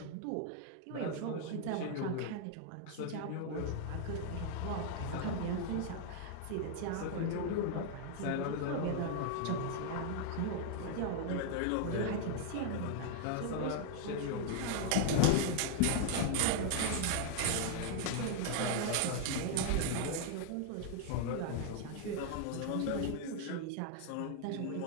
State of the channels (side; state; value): both; different; correlation 0.00